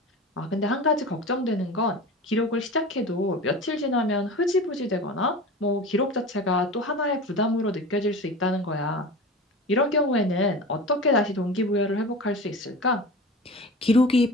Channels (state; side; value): normal; both; correlation 0.33